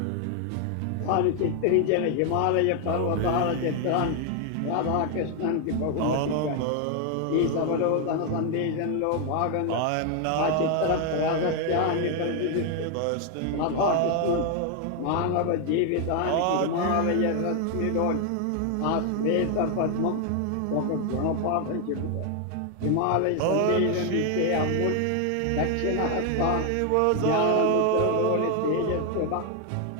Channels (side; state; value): both; different; correlation 0.00